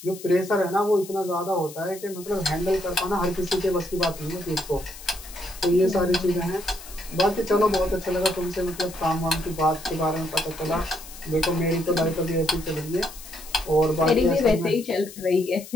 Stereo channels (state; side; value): noise; left; hiss, 16 dB below the sound